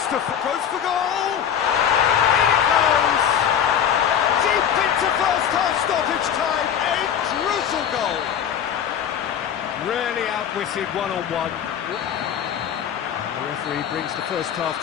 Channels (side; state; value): right; quieter; 8.9 dB